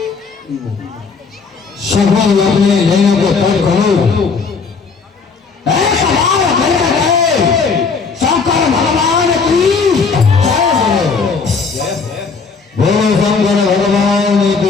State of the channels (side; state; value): right; quieter; 5.0 dB